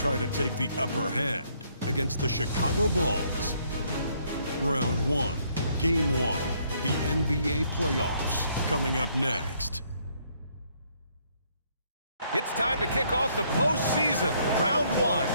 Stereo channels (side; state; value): both; inverted; correlation -0.68